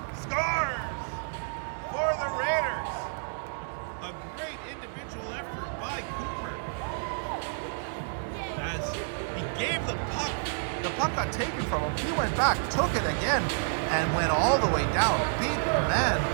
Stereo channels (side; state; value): left; silent; digital silence